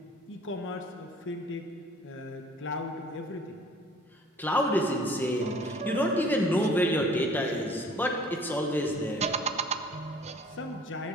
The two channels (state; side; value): normal; both; correlation 0.52